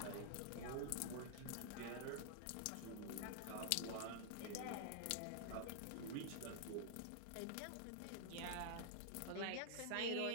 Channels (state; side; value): different; both; correlation -0.01